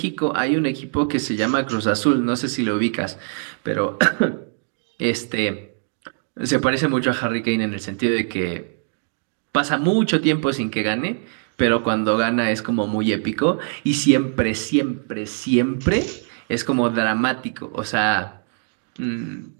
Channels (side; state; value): left; silent; digital silence